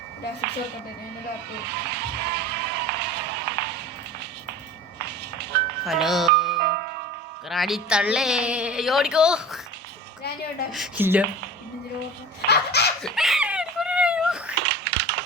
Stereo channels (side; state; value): both; normal; correlation 0.37